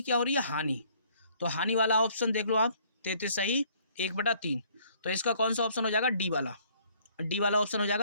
क्या हो रही है हानि, तो हानि वाला ऑप्शन देख लो आप 33 सही 1/3। तो इसका कौन सा ऑप्शन हो जाएगा, डी वाला। डी वाला ऑप्शन हो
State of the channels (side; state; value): both; inverted; correlation -0.61